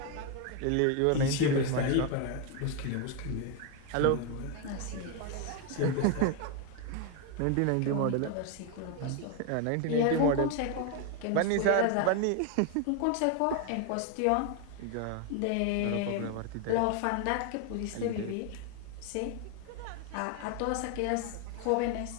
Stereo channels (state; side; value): different; both; correlation 0.01